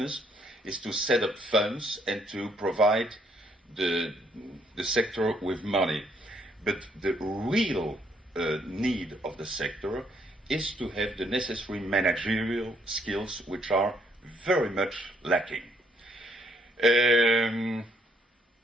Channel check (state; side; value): normal; both; correlation 0.69